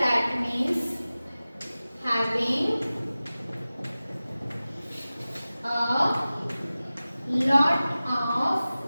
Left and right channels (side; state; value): both; inverted; correlation -0.97